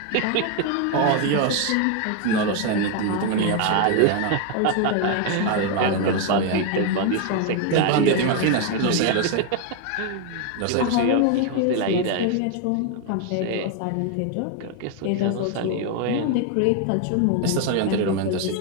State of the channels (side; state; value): both; different; correlation 0.01